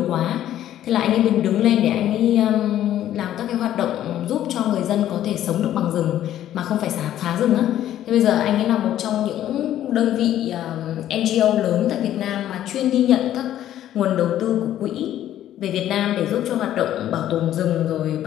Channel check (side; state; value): right; quieter; 12.0 dB